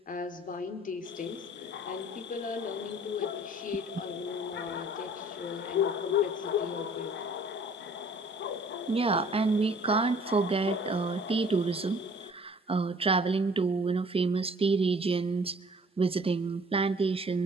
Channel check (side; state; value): both; normal; correlation 0.54